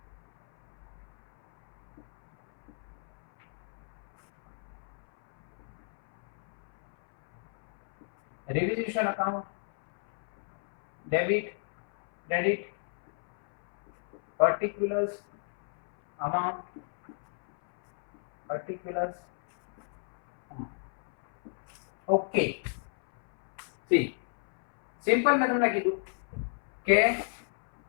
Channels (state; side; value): silent; right; 58 dB below the other